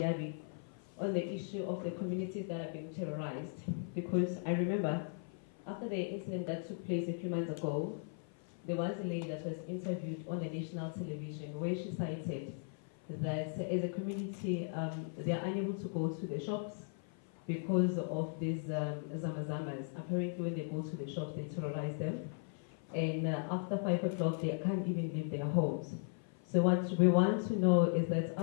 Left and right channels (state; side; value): silent; right; 53 dB below the other